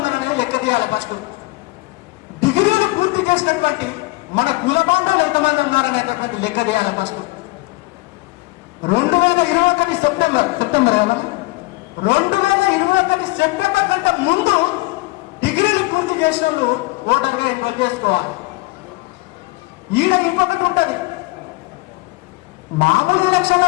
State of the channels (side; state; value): right; quieter; 22.2 dB